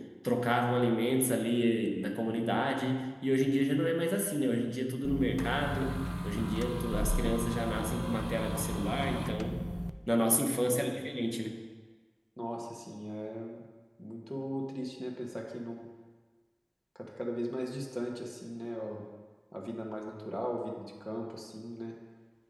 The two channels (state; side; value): identical; both; correlation 1.00